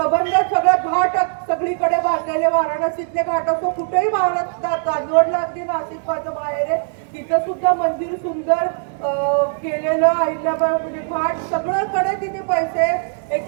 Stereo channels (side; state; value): left; silent; digital silence